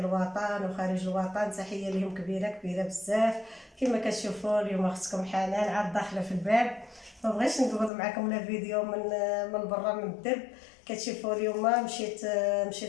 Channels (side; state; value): right; drops out; at 7.9 s